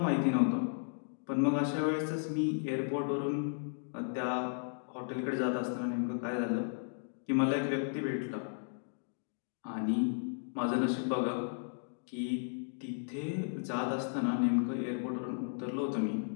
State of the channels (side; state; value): right; silent; digital silence